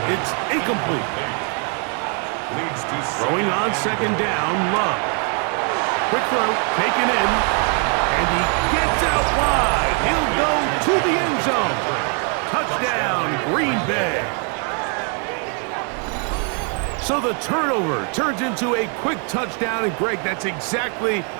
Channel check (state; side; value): quieter; left; 39.9 dB